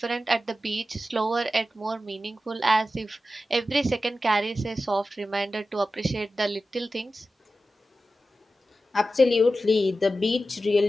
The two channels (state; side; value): normal; both; correlation 0.93